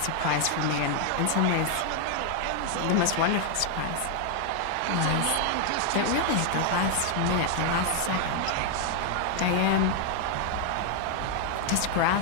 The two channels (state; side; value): different; both; correlation 0.00